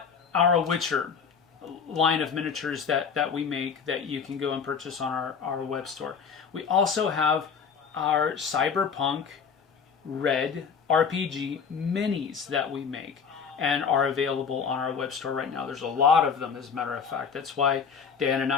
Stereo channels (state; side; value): quieter; right; 6.3 dB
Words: our Witcher line of miniatures that we make that you can go and purchase on our web store. We also have our Cyberpunk RED RPG minis that we make and are available on our web store right now. There's a lot of them, as a matter of fact. That's why Dan and